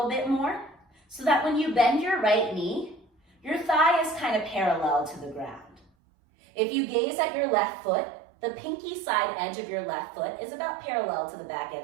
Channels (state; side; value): drops out; left; at 5.9 s